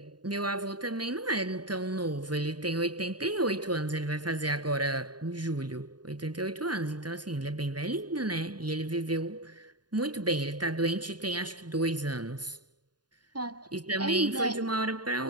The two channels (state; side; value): late; left; 0.70 ms